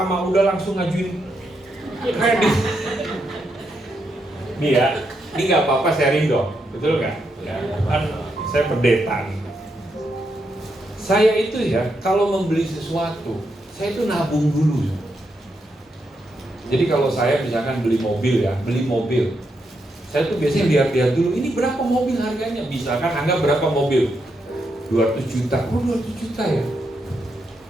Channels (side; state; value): both; normal; correlation 0.81